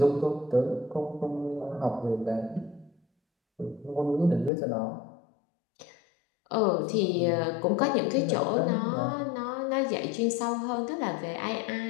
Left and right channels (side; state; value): right; drops out; at 4.5 s